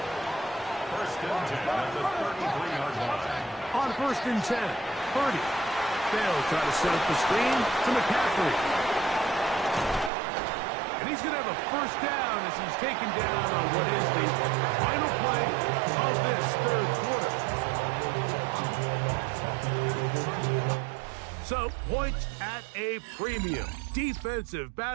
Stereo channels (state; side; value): drops out; left; at 10.1 s